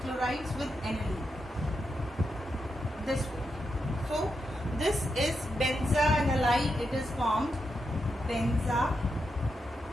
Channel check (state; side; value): normal; both; correlation 0.85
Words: chlorides with aniline. This way. So this is benzoanilide. It is formed.